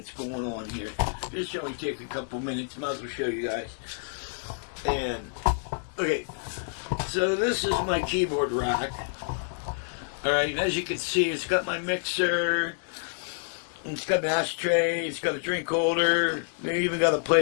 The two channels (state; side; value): silent; right; 59 dB below the other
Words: going on here. This should only take a couple minutes. Might as well show you guys. And okay. So this is my keyboard rack. Alright, as you can see, it's got my mixer, it's got an ashtray, it's got a drink holder, they even got a